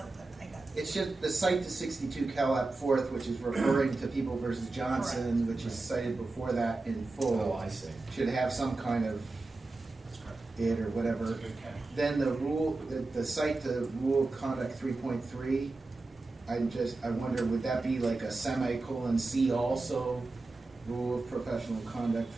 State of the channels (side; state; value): left; quieter; 3.3 dB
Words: but I got it. it's just the cite to 62 Cal at 4th, which is referring to People versus Johnson, which is cited before that in full. Oh, I see. Should have some kind of That's correct. it or whatever. That's a good catch. Then the rule, the cite to Rule of Conduct 3.3, I wonder, would that be like a semicolon C also, Rule of Professional Conduct